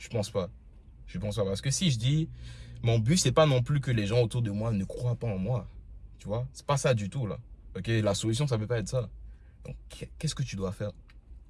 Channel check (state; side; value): identical; both; correlation 1.00